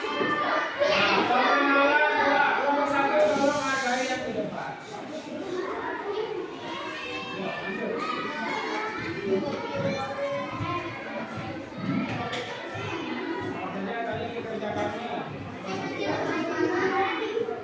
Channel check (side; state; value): both; identical; correlation 1.00